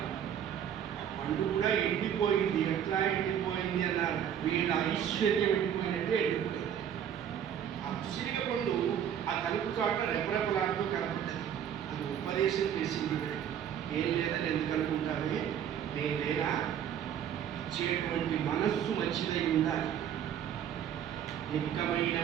పండు కూడా ఎండిపోయింది. ఎట్లా ఎండిపోయింది అన్నారు. వీళ్ళ ఐశ్వర్యం ఎండిపోయినట్టే ఎండిపోయింది. ఆ ఉసిరిగ పండు ఆ తలుపు చాట రెపరెపలాడుతూ కనపడ్డది. అది ఉపదేశం చేసింది. ఏం లేదని ఎందుకు అనుకుంటావే, నేను లేనా, ఇచ్చేటువంటి మనస్సు మంచిదై ఉండాలి. నిక్కమైన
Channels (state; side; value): quieter; left; 9.3 dB